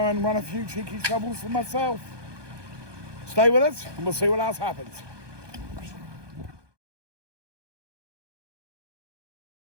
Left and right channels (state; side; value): late; left; 1.2 ms